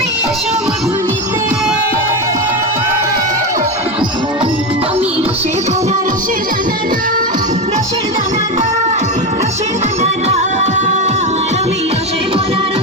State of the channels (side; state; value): both; normal; correlation 0.16